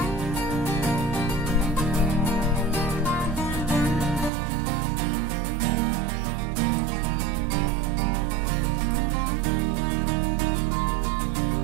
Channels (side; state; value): left; drops out; at 4.3 s